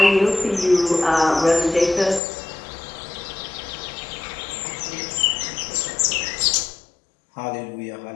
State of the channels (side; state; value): right; drops out; at 2.2 s